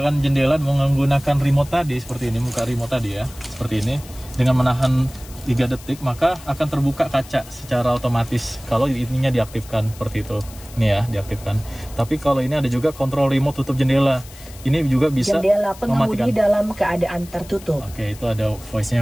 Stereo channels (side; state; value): left; noise; hiss, 19 dB below the sound